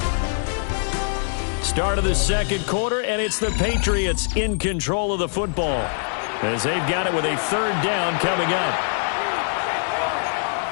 Start of the second quarter, and it's the Patriots in control of the football as they've got it with a 3rd down coming up.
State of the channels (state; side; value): silent; right; 57 dB below the other